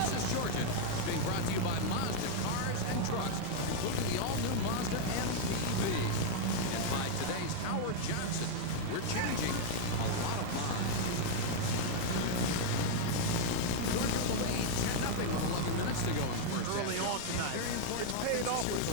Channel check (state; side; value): different; both; correlation -0.01